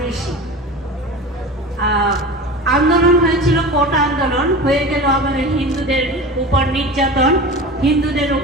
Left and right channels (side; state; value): both; normal; correlation 0.32